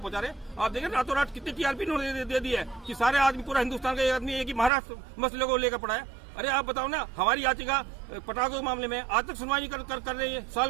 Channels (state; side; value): drops out; left; at 4.7 s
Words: पहुंचा रहे हैं। आप देखें रातों रात कितनी टीआरपी इन्होंने दे दी है कि सारे आदमी, पूरा हिंदुस्तान का आदमी एक ही महाराष्ट्र मसले को लेकर पड़ा है। अरे आप बताओ ना, हमारी याचिका पटाखों के मामले में आज तक सुनवाई कर रही है, साल